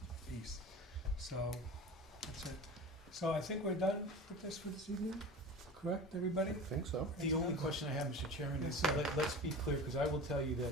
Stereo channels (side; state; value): both; normal; correlation 0.34